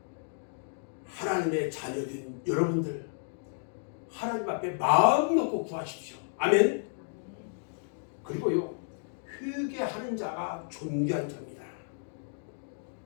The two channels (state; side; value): silent; right; digital silence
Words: 하나님의 자녀된 여러분들, 하나님 앞에 마음 놓고 구하십시오. 아멘. 그리고요, 회개하는 자가 존귀한 자입니다.